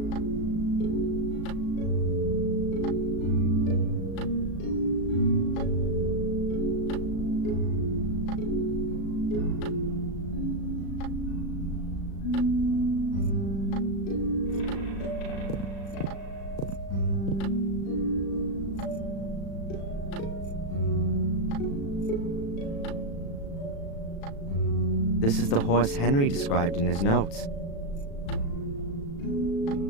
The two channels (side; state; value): right; late; 36 ms